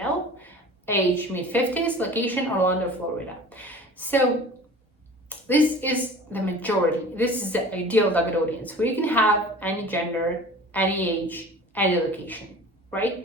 age mid-50s, location Orlando, Florida. So this is the majority. This is the ideal target audience, where you can have any gender, any age, any location,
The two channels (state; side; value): normal; both; correlation 0.42